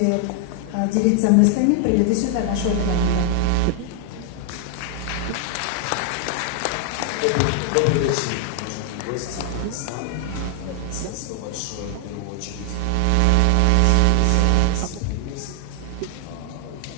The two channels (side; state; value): both; different; correlation 0.00